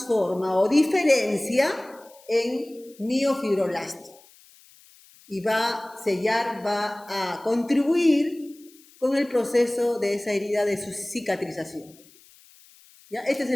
o diferencia en miofibroblasto. Y va a sellar, va a contribuir con el proceso de esa herida de su cicatrización. ¿Ya? Este es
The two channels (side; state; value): left; noise; hiss, 26 dB below the sound